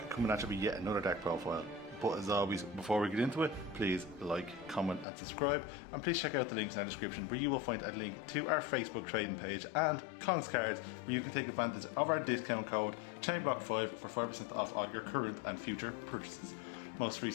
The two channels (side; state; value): right; drops out; at 5.1 s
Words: coming at you with yet another deck profile. But as always, before we get into it, please like, comment and subscribe, and please check out the links in the description where you will find a link to our Facebook trading page and Kongs Cards, where you can take advantage of our discount code ChainBlock5 for 5% off all your current and future purchases. Most